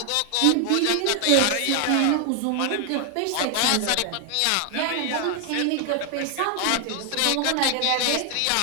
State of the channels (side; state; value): both; different; correlation 0.00